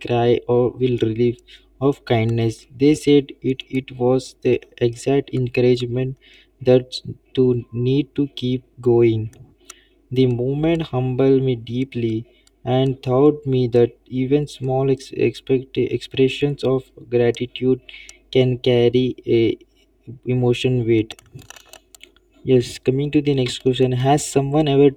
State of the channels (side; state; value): both; identical; correlation 1.00